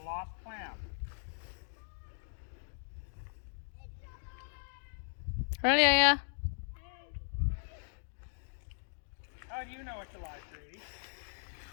lost clam. Ready, yeah. How do you know it's alive, Grady?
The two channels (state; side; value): silent; right; digital silence